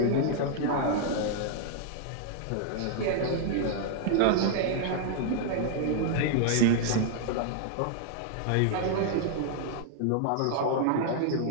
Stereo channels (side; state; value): both; different; correlation 0.00